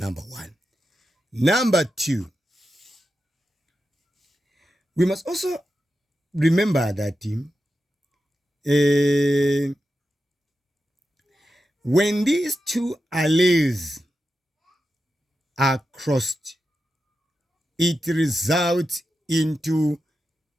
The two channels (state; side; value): normal; both; correlation 0.90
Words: 1. Number 2, we must also remember that when these 2 alleles are crossed, it results into